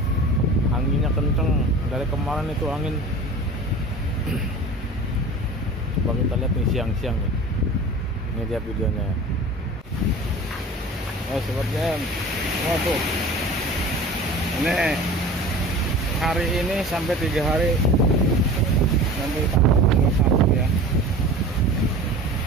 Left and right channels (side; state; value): both; normal; correlation 0.38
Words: anginnya kenceng. Dari kemarin itu angin. Coba kita lihat nih siang-siang nih. Ini dia videonya. Sobat BM, tuh. Ini hari ini sampai 3 hari nanti tanggal 1 ya,